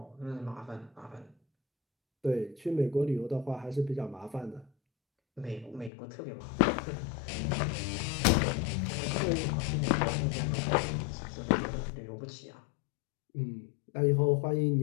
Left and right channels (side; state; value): right; drops out; at 5.9 s